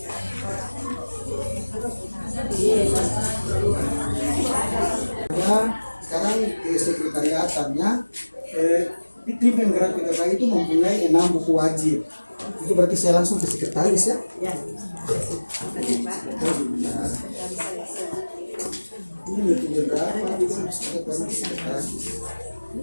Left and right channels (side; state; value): both; inverted; correlation -1.00